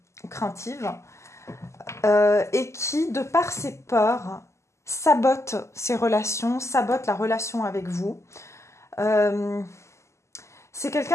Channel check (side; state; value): right; late; 0.13 ms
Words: craintive, et qui, de par ses peurs, sabote ses relations, sabote la relation avec vous. C'est